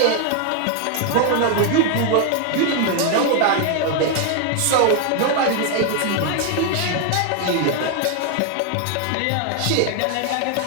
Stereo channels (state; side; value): different; both; correlation 0.00